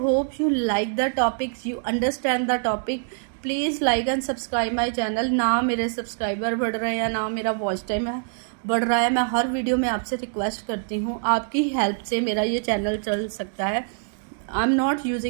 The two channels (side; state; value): left; silent; digital silence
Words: you like the topic, you understand the topic. Please like and subscribe my channel. ना मेरे सब्सक्राइबर बढ़ रहे हैं, ना मेरा वॉच टाइम है बढ़ रहा है। मैं हर वीडियो में आपसे रिक्वेस्ट करती हूँ, आपकी हेल्प से मेरा ये चैनल चल सकता है। I am not